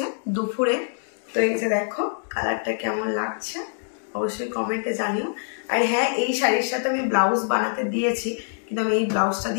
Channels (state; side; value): silent; right; digital silence